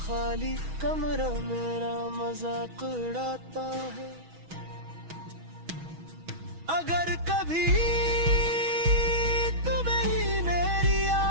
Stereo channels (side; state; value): left; late; 6.2 ms